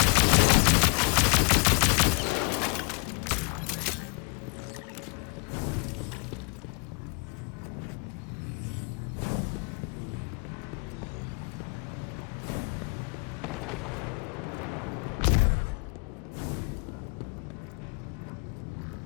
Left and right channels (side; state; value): right; quieter; 35.6 dB